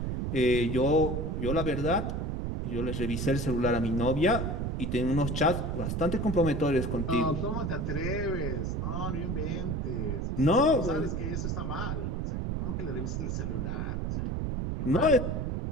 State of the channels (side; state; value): right; noise; rumble, 1 dB below the sound